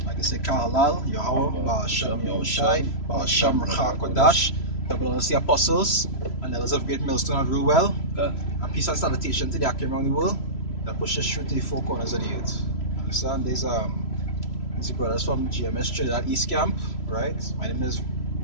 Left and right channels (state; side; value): late; right; 3.0 ms